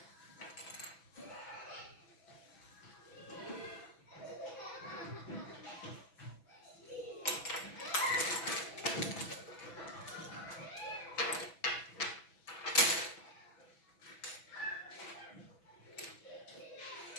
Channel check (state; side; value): late; right; 6.1 ms